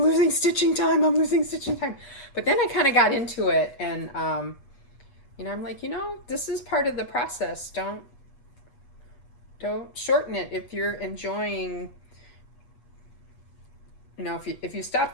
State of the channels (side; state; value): right; late; 8.3 ms